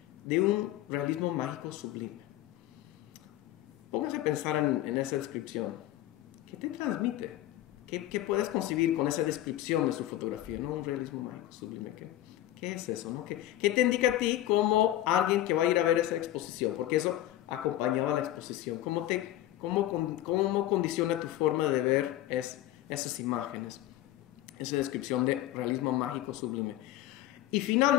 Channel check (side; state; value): right; quieter; 14.2 dB